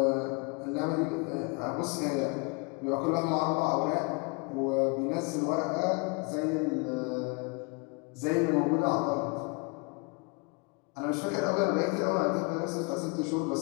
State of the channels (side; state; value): right; quieter; 30.8 dB